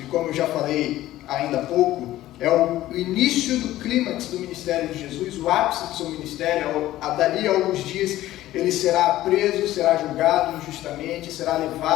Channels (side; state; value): right; quieter; 14.9 dB